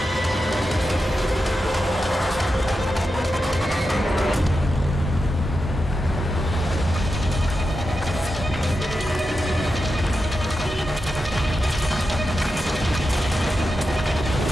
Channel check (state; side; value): normal; both; correlation 0.89